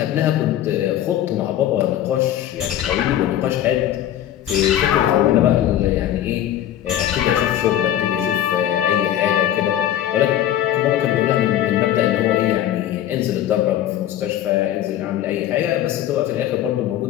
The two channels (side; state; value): right; quieter; 11.8 dB